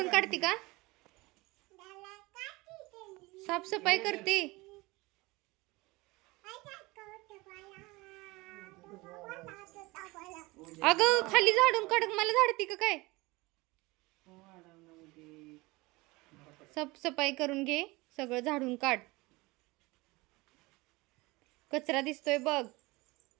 काढते का साफसफाई करते. अगं खाली झाडून काढ मला झाडते का काय. साफसफाई करून घे सगळं झाडून काढ. कचरा दिसतोय बघ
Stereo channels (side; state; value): left; quieter; 22.6 dB